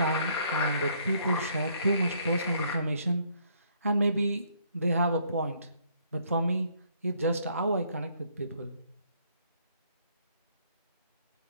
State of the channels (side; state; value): both; inverted; correlation -0.66